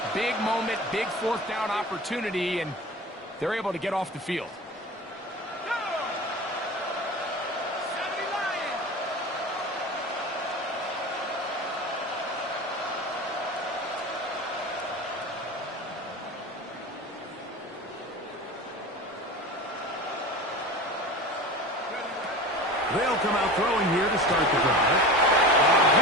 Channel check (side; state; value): both; normal; correlation 0.33